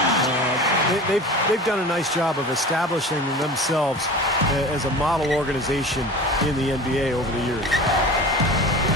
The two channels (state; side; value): normal; both; correlation 0.36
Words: They've done a nice job of establishing themselves as a model organization in the NBA over the years.